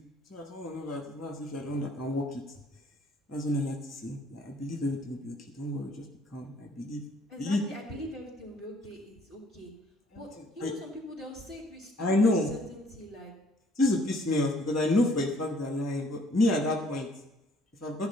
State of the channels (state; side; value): normal; both; correlation 0.61